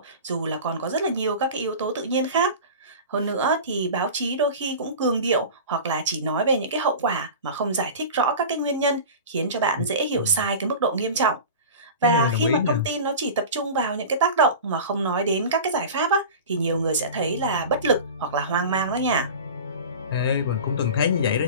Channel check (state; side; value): inverted; both; correlation -0.33